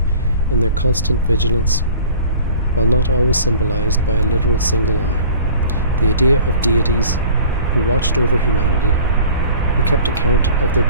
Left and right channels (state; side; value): inverted; both; correlation -0.46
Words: in their constant vigilance, while not always symbolized by a literal single eye. The idea of deities who watched over humanity, who kept account of their